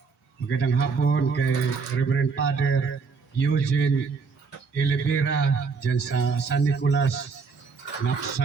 Magandang hapon kay Reverend Father Eugene Elivera dyan sa San Nicolas,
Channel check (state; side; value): quieter; left; 4.9 dB